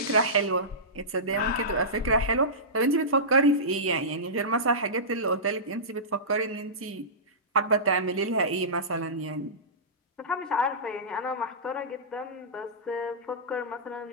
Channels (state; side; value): normal; both; correlation -0.18